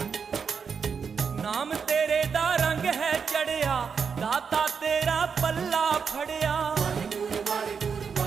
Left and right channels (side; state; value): left; quieter; 6.1 dB